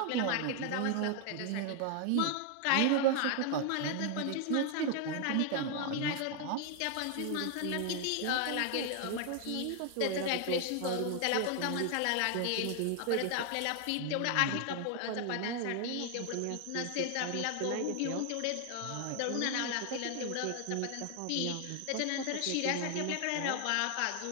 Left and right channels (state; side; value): different; both; correlation 0.00